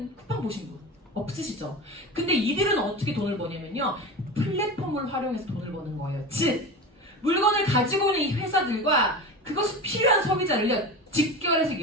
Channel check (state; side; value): normal; both; correlation 0.28